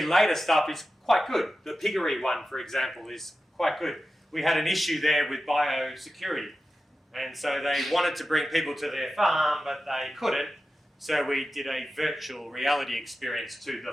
later stuff is quite good. The piggery one, for example, is quite good. We had an issue there with biosecurity. And so they wanted to bring people to their farm, but they couldn't. So we did a virtual reality experience to the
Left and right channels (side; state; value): both; normal; correlation 0.93